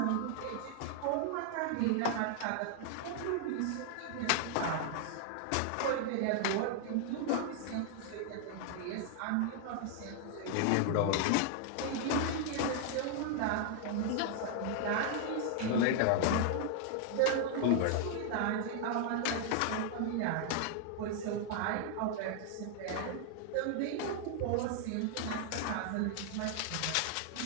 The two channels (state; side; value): different; both; correlation 0.00